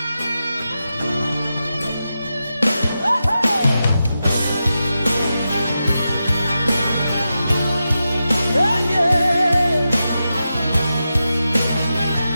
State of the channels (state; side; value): inverted; both; correlation -0.90